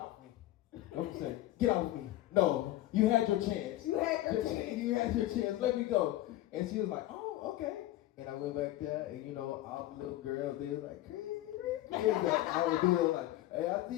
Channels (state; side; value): quieter; right; 15.4 dB